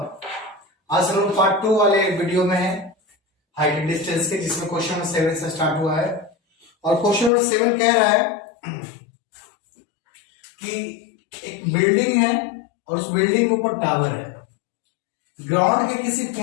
हम लोग पार्ट 2 वाले वीडियो में है हाइट एंड डिस्टेंस के, जिसमें क्वेश्चन नंबर 7 से स्टार्ट हुआ है। और क्वेश्चन नंबर 7 कह रहा है कि एक बिल्डिंग है और उस बिल्डिंग के ऊपर टावर है। ग्राउंड के किसी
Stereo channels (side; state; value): right; drops out; at 7.3 s